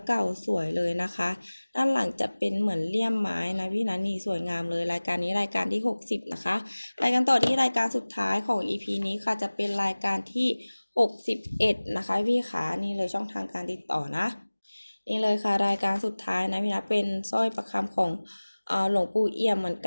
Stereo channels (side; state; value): both; inverted; correlation -1.00